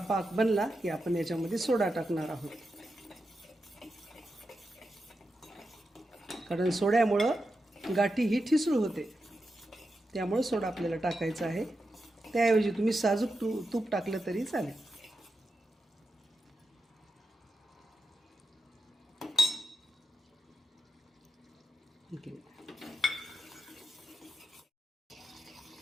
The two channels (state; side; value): normal; both; correlation 0.88